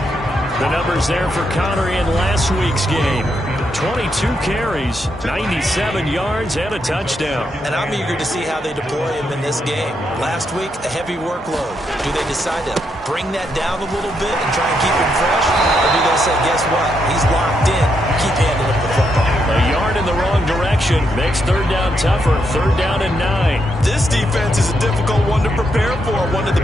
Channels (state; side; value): normal; both; correlation 0.79